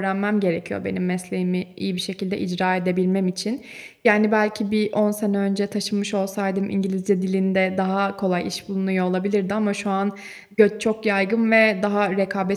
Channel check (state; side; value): identical; both; correlation 1.00